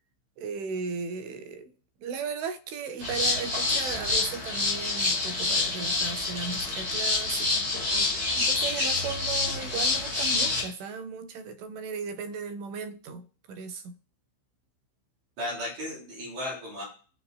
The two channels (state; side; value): late; left; 15 ms